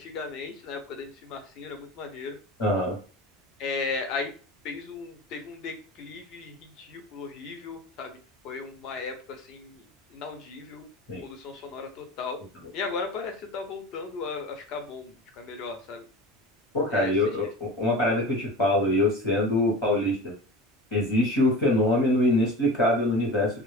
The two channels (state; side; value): normal; both; correlation 0.34